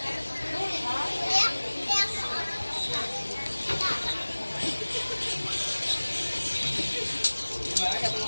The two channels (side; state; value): both; inverted; correlation -1.00